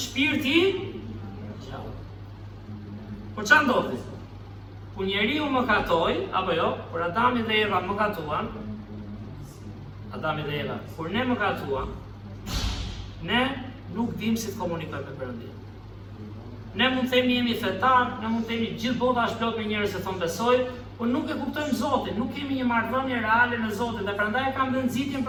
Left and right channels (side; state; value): both; identical; correlation 1.00